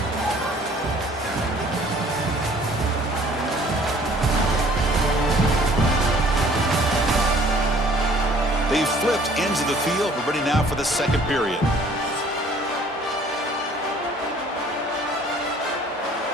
They've flipped ends of the field. We're ready now for the second period.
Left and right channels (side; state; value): both; normal; correlation 0.55